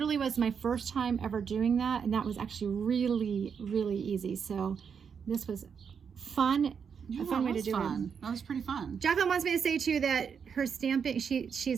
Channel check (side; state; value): left; quieter; 6.7 dB